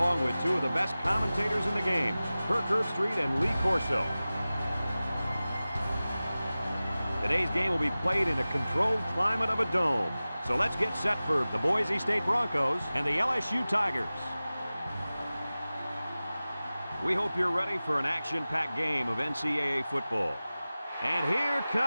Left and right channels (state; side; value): inverted; both; correlation -0.97